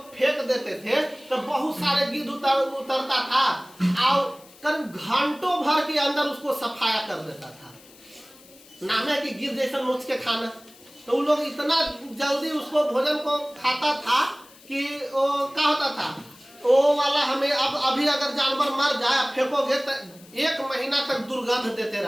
फेंक देते थे तो बहुत सारे गीध उतरता था और करीब घंटों भर के अंदर उसको सफाया कर देता था। नाम है कि गीध जैसा नोच के खाना। तो उन लोग इतना जल्दी उसको भोजन को खाता था कि वो क्या होता था, वो वाला हमें अब अभी अगर जानवर मर जाए फेंकोगे तो 1 महीना तक दुर्गंध देते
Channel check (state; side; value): noise; left; hiss, 24 dB below the sound